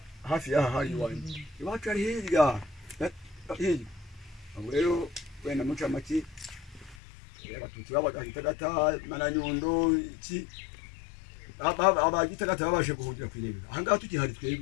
hafi y'aha hari iwanjye iwacu ari hirya abo rero wenda muca make abatutsi babagahitagata mananyundo iki abagitagata babashe guhungira kwirebera ahangaha tukihari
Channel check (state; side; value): drops out; right; at 7.0 s